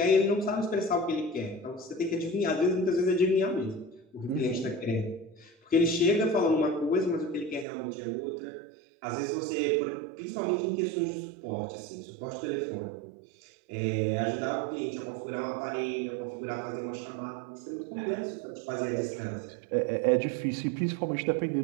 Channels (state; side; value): drops out; left; at 7.7 s